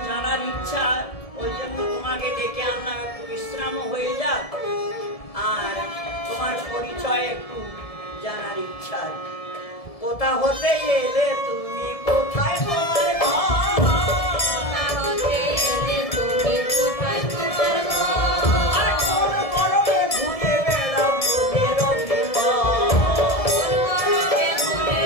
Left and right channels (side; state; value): right; late; 1.7 ms